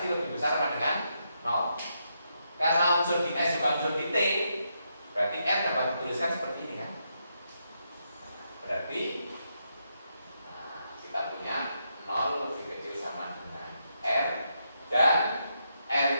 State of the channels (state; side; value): inverted; both; correlation -0.81